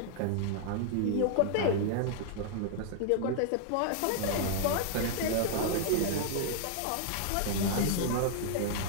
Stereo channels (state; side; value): different; both; correlation 0.00